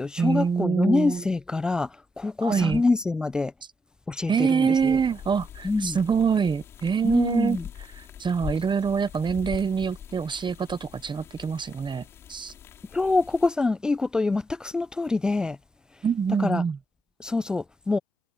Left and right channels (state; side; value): normal; both; correlation 0.82